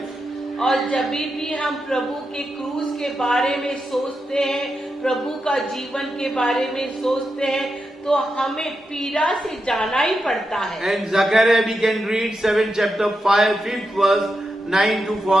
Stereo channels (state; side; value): normal; both; correlation 0.87